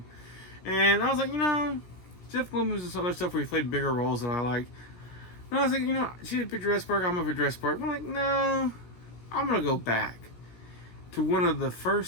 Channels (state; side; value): late; right; 17 ms